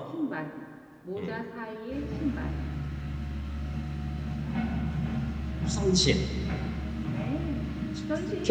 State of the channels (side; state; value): both; identical; correlation 1.00